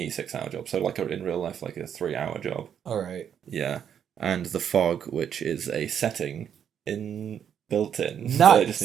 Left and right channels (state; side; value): quieter; left; 8.6 dB